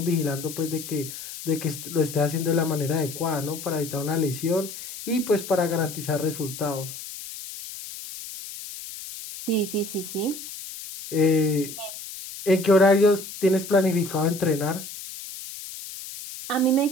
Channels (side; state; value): left; noise; hiss, 11 dB below the sound